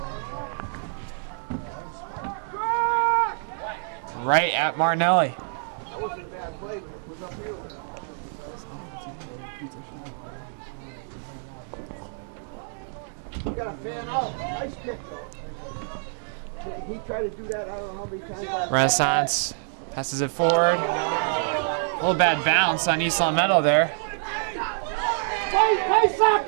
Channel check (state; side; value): silent; left; 61 dB below the other